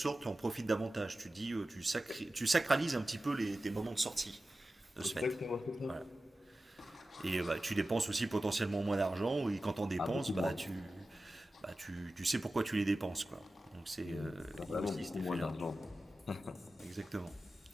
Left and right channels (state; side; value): normal; both; correlation 0.94